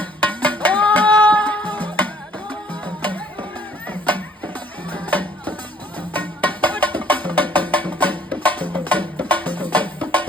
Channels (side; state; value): both; normal; correlation 0.60